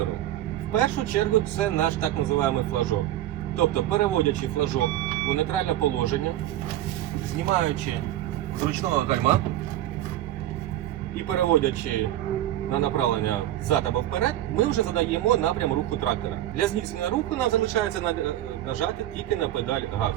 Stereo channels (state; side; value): quieter; left; 13.4 dB